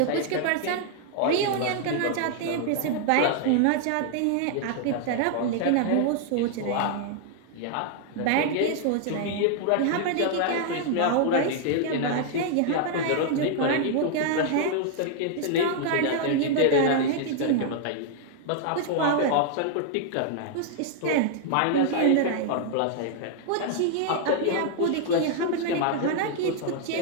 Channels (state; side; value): different; both; correlation 0.00